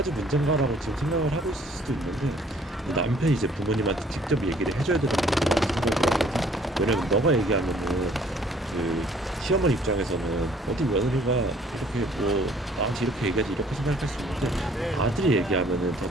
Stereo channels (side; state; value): both; normal; correlation 0.58